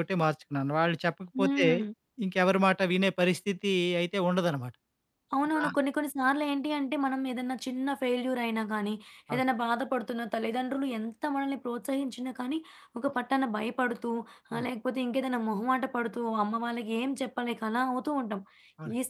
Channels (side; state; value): both; identical; correlation 1.00